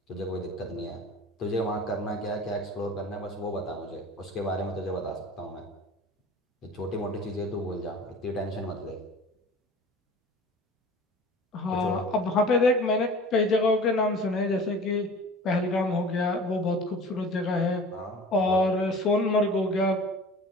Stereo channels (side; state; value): both; normal; correlation 0.41